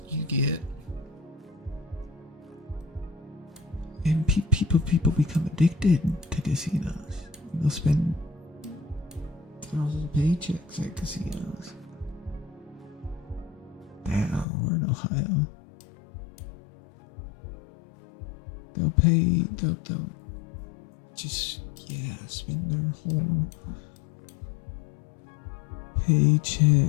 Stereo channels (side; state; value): right; drops out; at 14.5 s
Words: You get, and people become addicted to casinos. They'll spend thousands of paychecks at casinos. Damn, we're in Ohio. They'll just, spend their whole